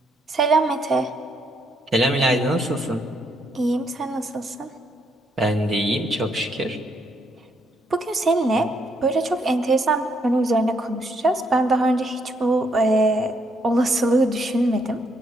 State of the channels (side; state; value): both; normal; correlation 0.74